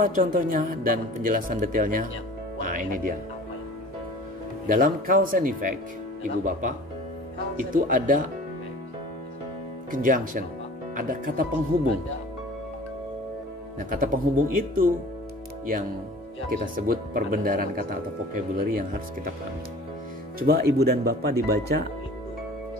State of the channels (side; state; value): both; normal; correlation 0.44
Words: contohnya dan penjelasan detailnya? Nah, ini dia. Dalam cause and effect, ibu bapak, itu ada conjunction, ada kata penghubung. Nah, kata penghubung itu yang kita sebut perbendaharaan kata atau vocabulary yang harus kita pahami. Coba ibu dan bapak dibaca